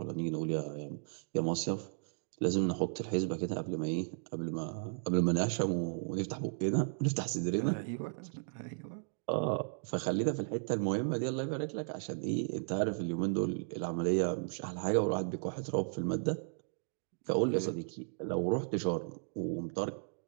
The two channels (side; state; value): left; silent; digital silence